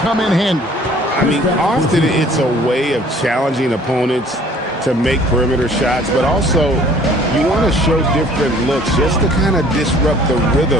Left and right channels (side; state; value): both; normal; correlation 0.54